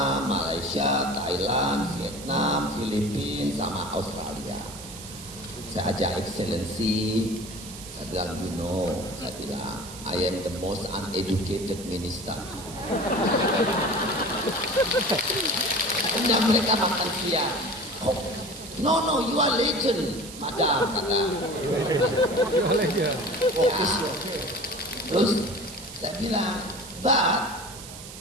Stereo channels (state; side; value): noise; right; hiss, 14 dB below the sound